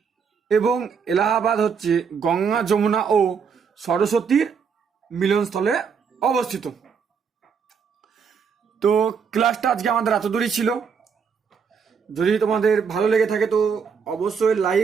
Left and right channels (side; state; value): left; quieter; 6.3 dB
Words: এবং এলাহাবাদ হচ্ছে গঙ্গা যমুনা ও সরস্বতীর মিলনস্থলে অবস্থিত। তো ক্লাসটা আজকে আমাদের এত দূরই ছিল। যদি তোমাদের ভালো লেগে থাকে তো অবশ্যই